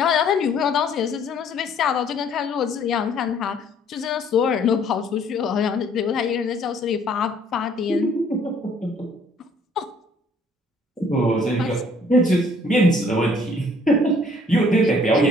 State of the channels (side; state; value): both; normal; correlation 0.60